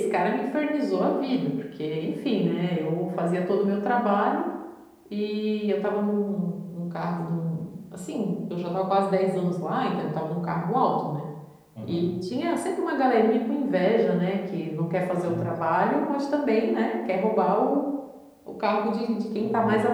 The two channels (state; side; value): identical; both; correlation 1.00